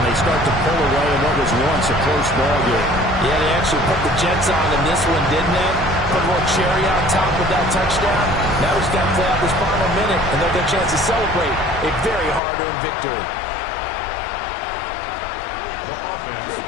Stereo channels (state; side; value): drops out; right; at 12.4 s